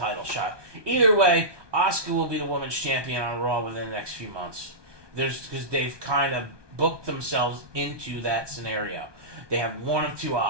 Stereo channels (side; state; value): left; late; 1.2 ms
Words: shot? Either way, Asuka will be the women's champion on Raw within the next few months. Because they've kind of booked themselves into that scenario. They have one of two